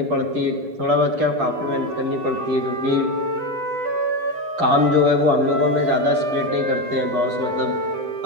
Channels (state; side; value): late; left; 9.9 ms